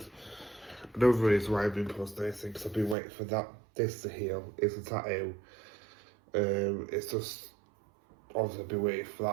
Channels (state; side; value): drops out; left; at 3.0 s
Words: another reason why I've been posting anything because I've been waiting for this to heal. It's a tattoo. It's just obviously I've been waiting for